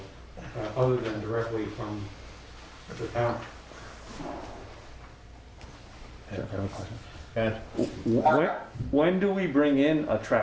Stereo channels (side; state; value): both; identical; correlation 1.00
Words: other than directly from the town. And When do we bring in a